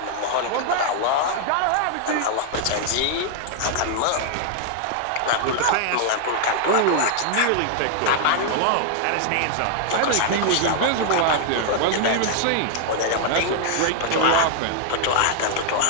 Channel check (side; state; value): both; different; correlation 0.00